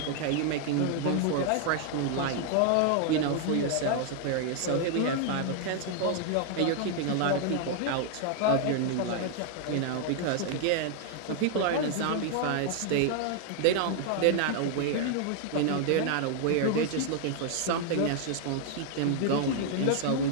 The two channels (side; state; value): both; different; correlation 0.00